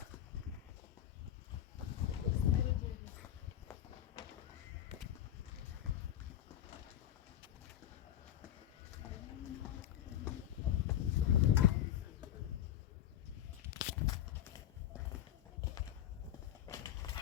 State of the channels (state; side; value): quieter; right; 11.3 dB